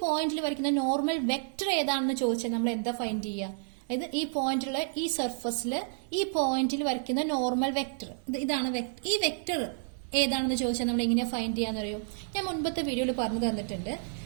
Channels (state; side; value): silent; left; digital silence